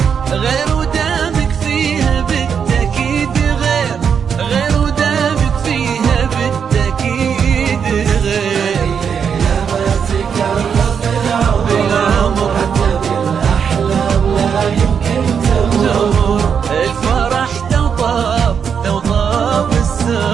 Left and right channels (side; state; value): left; quieter; 7.0 dB